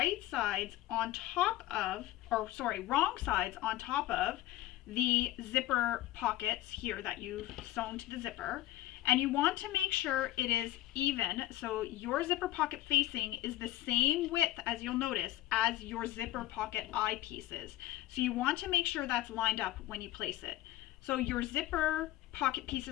sides on top of, wrong sides on top of the zipper pockets here that you've sewn to the zipper. And you want to make sure it is even, so your zipper pocket facing is the same width, as you'll notice, as your zipper pocket eye pieces. So you want to make sure that's lined up when you place it. So your zipper pocket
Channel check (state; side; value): quieter; right; 15.3 dB